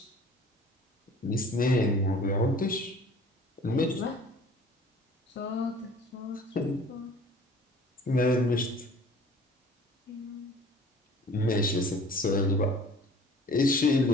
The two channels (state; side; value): normal; both; correlation 0.48